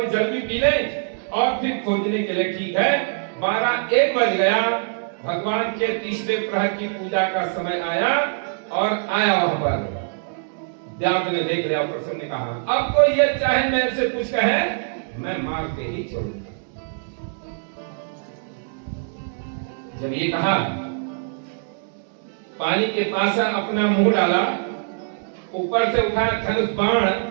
जल भी पी ले और फिर खोजने के लिए ठीक है। 12-1 बज गया, भगवान के तीसरे प्रहर की पूजा का समय आया और आया वहां पर। व्यास ने देख लिया, प्रसन्न ने कहा अब तो ये चाहे मेरे से कुछ कहे, मैं मार के ही छोड़ूंगा। जब ये कहा, पानी के पास अपना मुंह डाला, ऊपर से उठा धनुष बाण,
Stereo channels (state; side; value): silent; left; digital silence